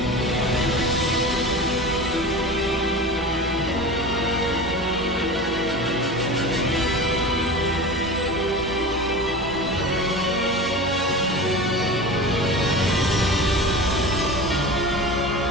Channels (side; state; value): both; normal; correlation 0.31